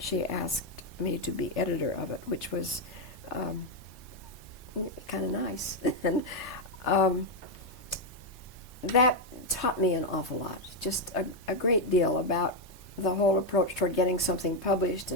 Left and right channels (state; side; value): normal; both; correlation 0.03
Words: asked me to be editor of it, which was kind of nice. And that taught me an awful lot, just a great deal about the whole approach toward getting something published